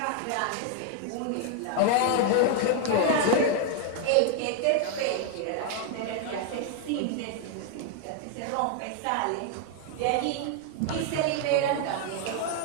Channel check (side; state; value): both; different; correlation 0.00